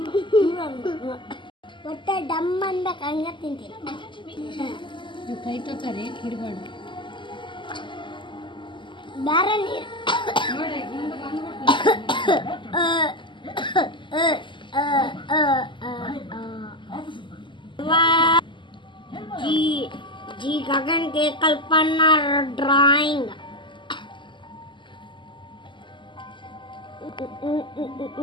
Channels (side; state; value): right; late; 0.24 ms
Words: ಒಟ್ಟೆ ಡಮ್ ಅನ್ಬೇಕು ಹಂಗೆ ತಿಂತೀನಿ. ಕೈ ತಕರಿ ಹಿಡ್ಬೇಡ ಬೇರೆ ನೀರು जी गगन के कल्पना ड्राइंग